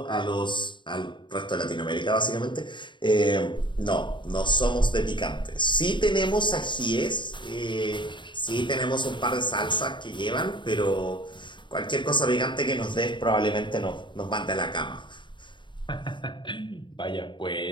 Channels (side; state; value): right; late; 0.23 ms